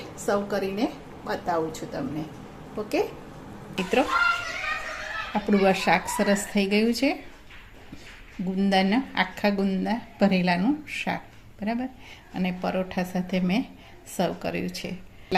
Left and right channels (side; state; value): both; identical; correlation 1.00